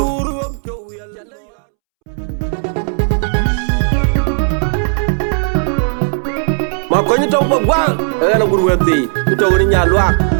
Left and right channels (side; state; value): left; silent; 70 dB below the other